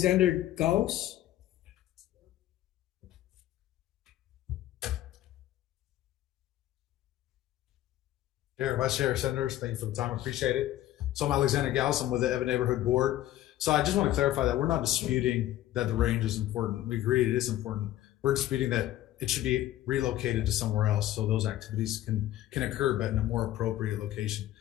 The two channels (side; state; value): right; quieter; 13.9 dB